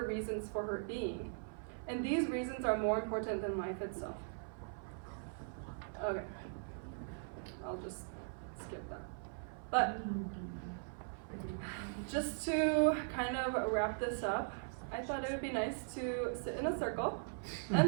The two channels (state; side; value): silent; left; 51 dB below the other